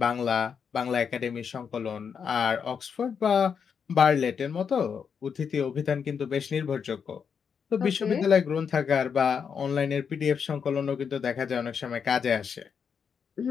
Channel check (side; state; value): right; quieter; 6.7 dB